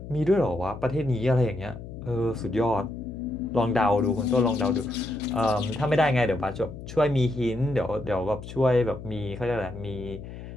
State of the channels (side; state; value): left; noise; hum, 12 dB below the sound